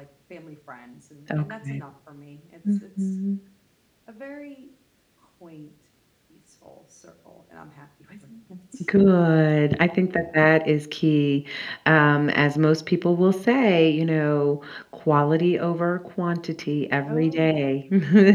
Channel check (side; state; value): both; identical; correlation 1.00